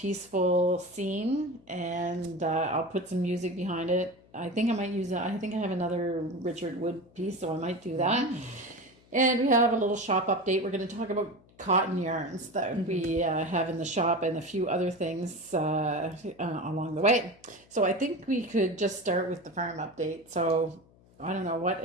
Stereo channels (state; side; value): noise; left; hum, 28 dB below the sound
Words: scene. And I'll put some music behind it. I think I might use it. I think I have another Richard Wood piece, so I might do that. And we have a little shop update. We're going to talk about cotton yarns that we have in the shop and a few other things along the way. So I think we could just start with the farm update. So I don't